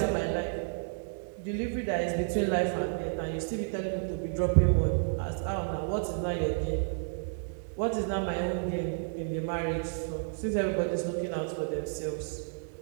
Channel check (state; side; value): silent; left; digital silence